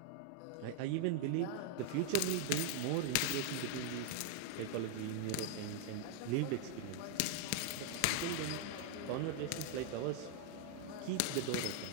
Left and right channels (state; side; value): different; both; correlation 0.00